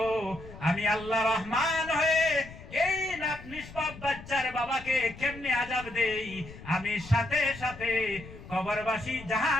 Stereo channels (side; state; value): left; noise; rumble, 16 dB below the sound